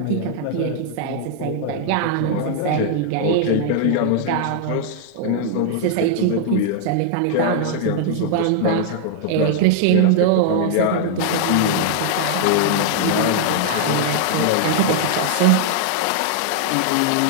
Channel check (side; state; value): both; different; correlation -0.01